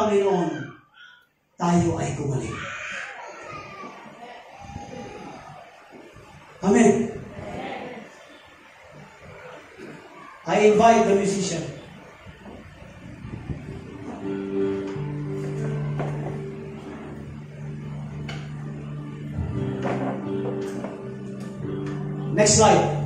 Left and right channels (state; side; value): identical; both; correlation 1.00